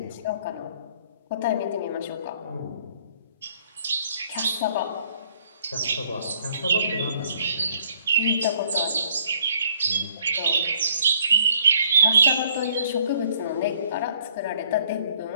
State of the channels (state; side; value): inverted; both; correlation -0.62